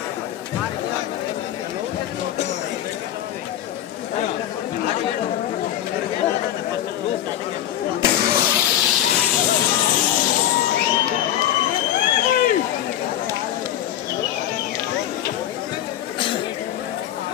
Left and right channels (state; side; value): quieter; right; 12.0 dB